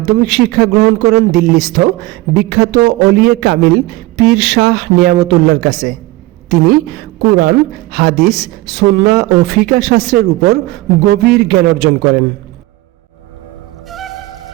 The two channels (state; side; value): quieter; left; 19.4 dB